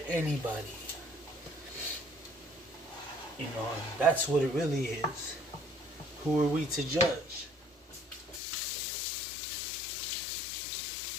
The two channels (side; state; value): right; drops out; at 8.4 s